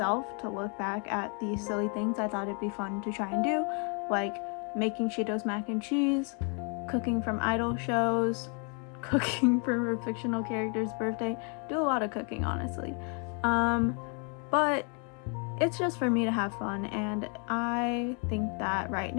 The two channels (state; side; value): quieter; right; 37.8 dB